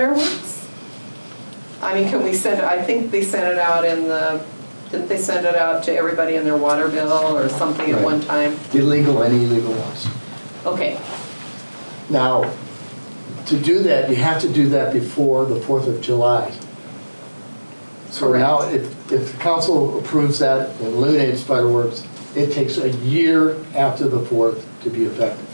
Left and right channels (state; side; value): inverted; both; correlation -1.00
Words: I mean, can we send it, I think they sent it out in the, didn't they send it out to everybody in their water bill or something at one time? Illegal and illegal ones. Okay. Now, to do that, you have to do that before the 4th of July. So Correct. now, if the council approves that and eliminates fireworks, it takes a year after the 4th to be effective.